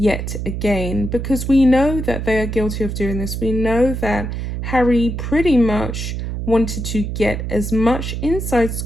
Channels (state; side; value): noise; right; hum, 4 dB below the sound